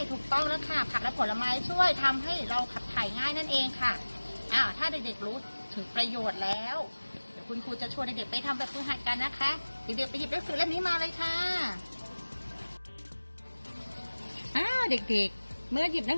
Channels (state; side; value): inverted; both; correlation -1.00